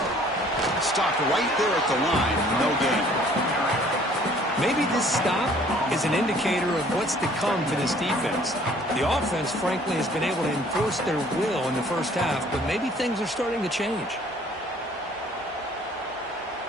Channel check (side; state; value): both; normal; correlation 0.56